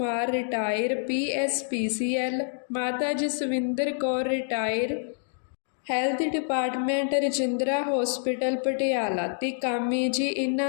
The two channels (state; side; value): silent; right; digital silence